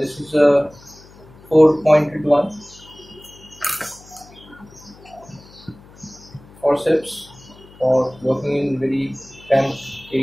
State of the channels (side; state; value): left; noise; hum, 23 dB below the sound